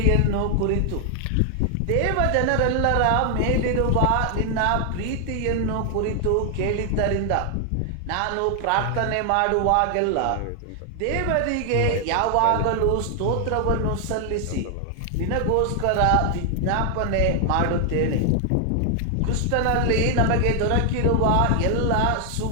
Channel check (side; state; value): both; different; correlation 0.00